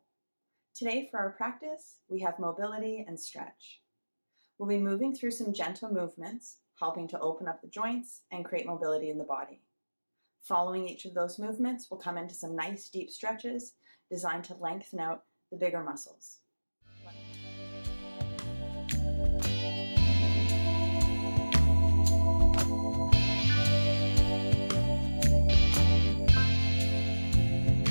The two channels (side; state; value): both; inverted; correlation -1.00